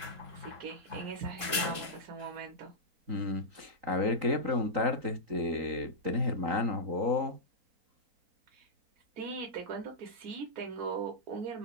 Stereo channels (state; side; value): late; left; 3.7 ms